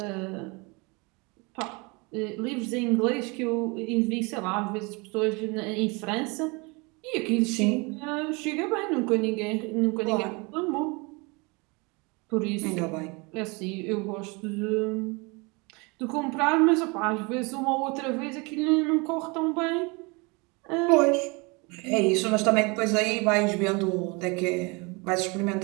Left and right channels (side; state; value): left; quieter; 28.3 dB